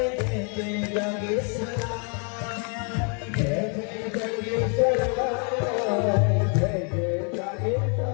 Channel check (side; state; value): right; quieter; 39.2 dB